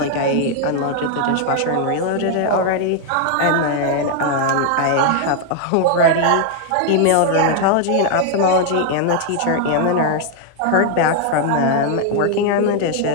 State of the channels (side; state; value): both; different; correlation 0.00